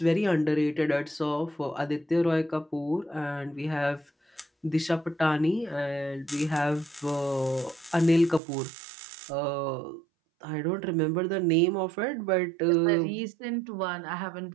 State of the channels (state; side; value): drops out; left; at 8.4 s